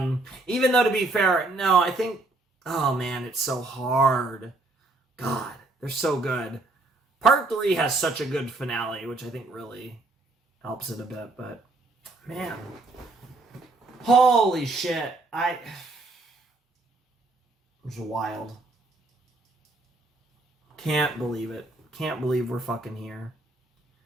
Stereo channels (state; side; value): quieter; left; 3.1 dB